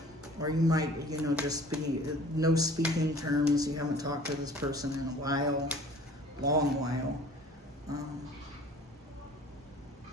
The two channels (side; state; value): both; normal; correlation 0.48